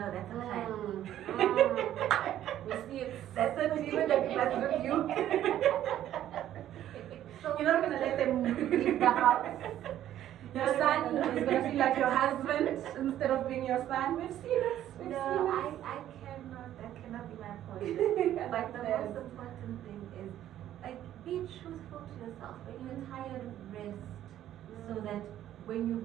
that's a crime. We see it. That's a demon that must with you. So you're not gonna let them leave the house. Your son is gonna feel like your husband instead of being your son. We've seen it. I cannot. That cannot be my point. But the most important thing is, like, be truthful to yourself. When you're tired, rest, so that when you're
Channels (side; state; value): left; quieter; 12.0 dB